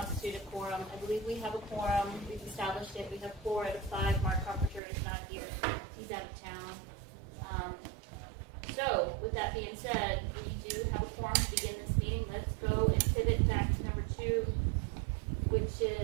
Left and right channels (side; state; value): left; drops out; at 4.8 s